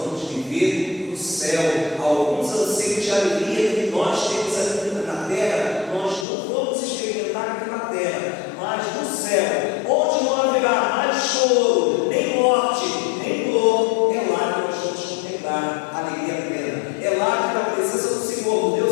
vamos viver no céu. Alguns anseios de alegria que nós temos aqui na terra, nós não vamos experimentar aqui na terra, mas no céu, onde não haverá mais choro, nem morte, nem dor, é lá que nós vamos contemplar a alegria plena. É lá que, na presença do Senhor,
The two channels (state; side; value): drops out; right; at 6.2 s